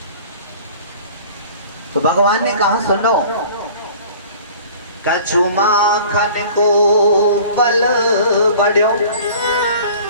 तो भगवान ने कहा सुनो, कछु माखन को बल बढ़ो,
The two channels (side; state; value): both; inverted; correlation -0.46